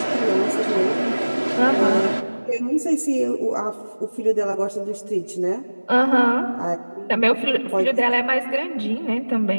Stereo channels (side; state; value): both; inverted; correlation -1.00